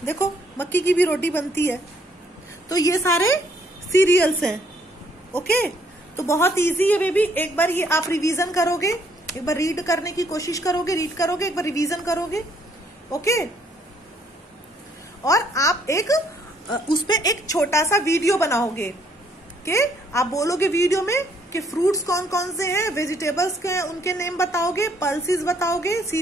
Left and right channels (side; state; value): both; normal; correlation 0.67